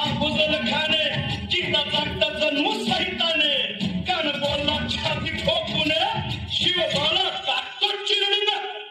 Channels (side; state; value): both; identical; correlation 1.00